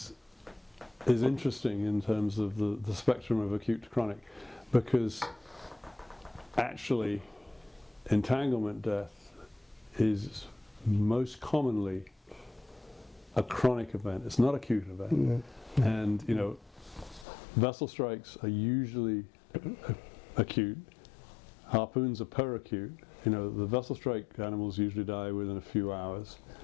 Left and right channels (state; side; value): drops out; right; at 17.2 s